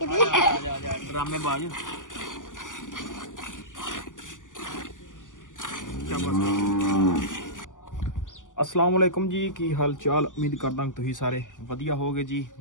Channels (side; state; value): right; late; 0.87 ms